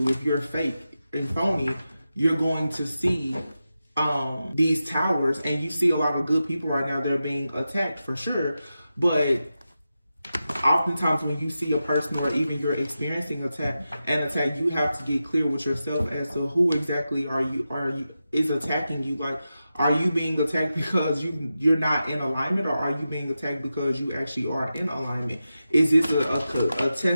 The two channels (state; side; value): inverted; both; correlation -0.91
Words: If you're fake and phony, you're going to see these towers, and you see a lot of good people right now. They're being attacked for sure, but oftentimes when you see a person, or even you're experiencing an attack, you have to get clear with yourself as to who exactly is attacking you. Like, are you being attacked because you're not in alignment, or are you being attacked because you actually are in alignment? Is this a